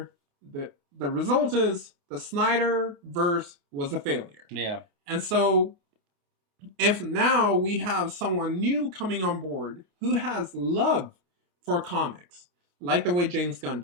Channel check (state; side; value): late; left; 29 ms